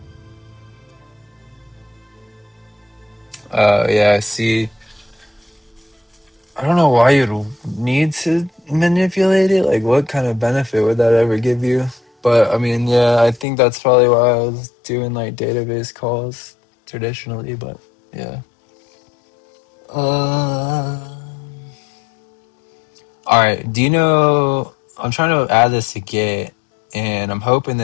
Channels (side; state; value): right; drops out; at 13.5 s